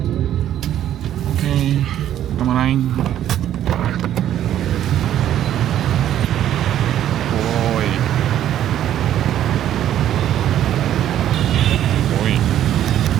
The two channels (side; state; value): left; quieter; 11.4 dB